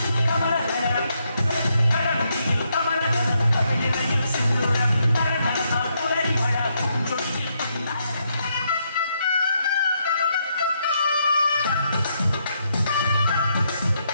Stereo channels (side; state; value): both; inverted; correlation -0.77